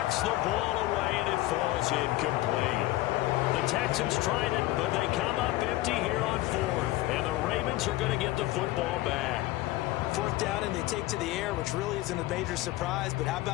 the ball away, and it falls incomplete. The Texans tried it, but they come up empty here on fourth. And the Ravens are going to get the football back. Fourth down, and they take to the air, which really isn't a major surprise. But how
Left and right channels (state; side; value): quieter; right; 17.3 dB